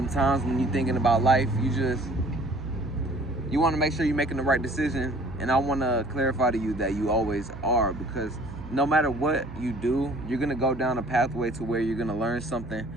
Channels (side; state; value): right; noise; hum, 14 dB below the sound